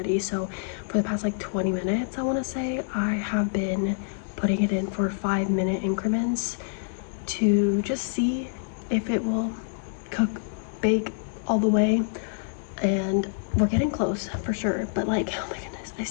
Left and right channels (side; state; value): right; silent; digital silence